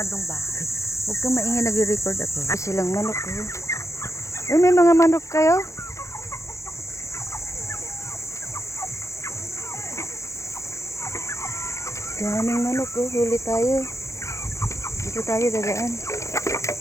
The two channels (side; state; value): right; late; 0.14 ms